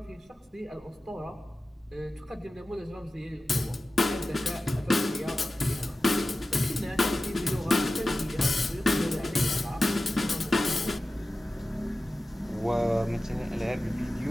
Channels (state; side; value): normal; both; correlation 0.95